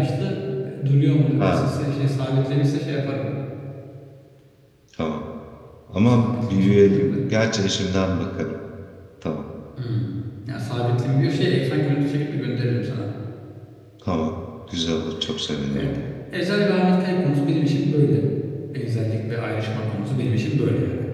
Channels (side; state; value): both; identical; correlation 1.00